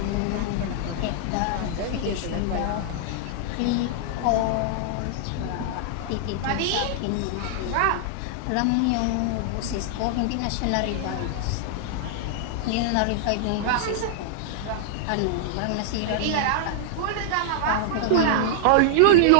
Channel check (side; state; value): both; different; correlation -0.01